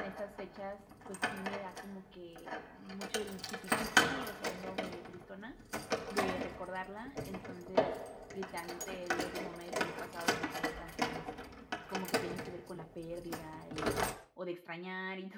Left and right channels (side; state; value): both; identical; correlation 1.00